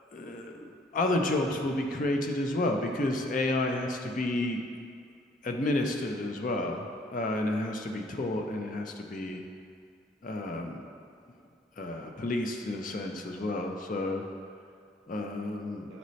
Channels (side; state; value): both; normal; correlation 0.60